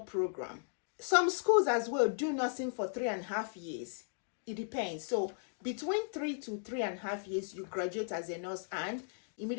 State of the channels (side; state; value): right; silent; digital silence